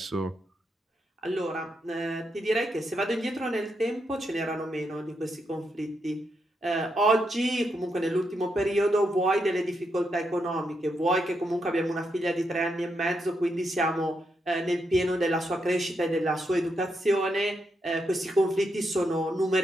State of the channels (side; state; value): both; normal; correlation 0.82